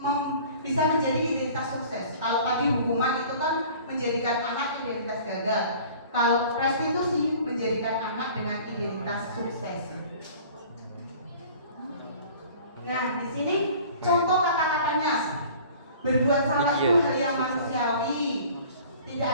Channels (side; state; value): both; inverted; correlation -0.47